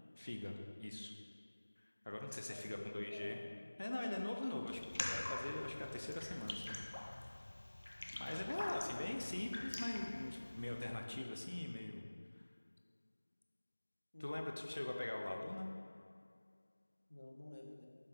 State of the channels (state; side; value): inverted; both; correlation -1.00